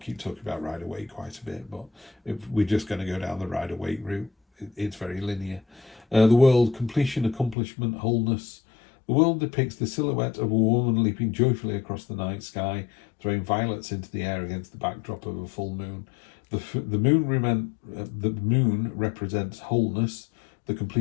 keep talking about Rider-Waite quite a bit, but if we're just going to go down the Rider-Waite route, it's very linear. The world, completion, accomplishment, wholeness. The world depicts the silhouette of a woman leaping joyfully across the night sky, throwing violets into the air against the backdrop of a full moon. The moon represents wholeness, the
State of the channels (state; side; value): drops out; right; at 7.6 s